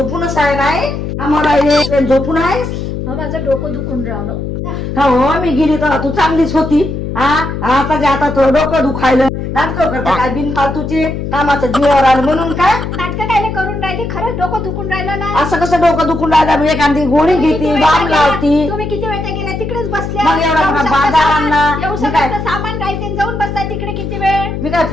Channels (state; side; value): noise; left; hum, 5 dB below the sound